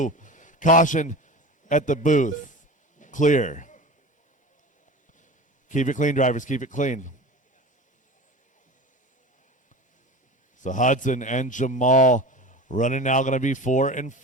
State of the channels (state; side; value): normal; both; correlation 0.33